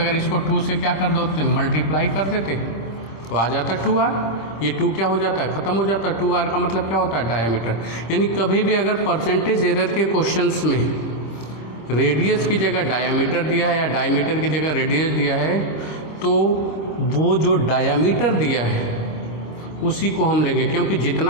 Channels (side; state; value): right; late; 26 ms